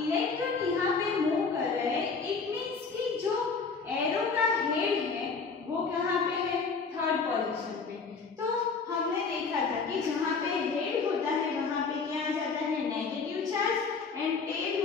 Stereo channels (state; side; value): quieter; right; 4.8 dB